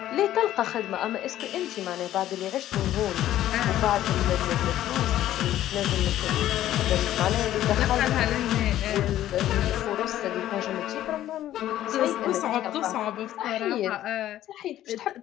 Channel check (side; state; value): right; quieter; 13.0 dB